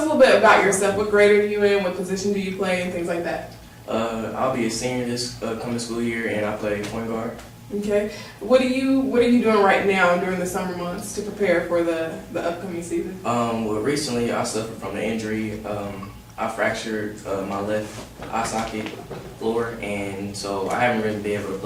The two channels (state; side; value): identical; both; correlation 1.00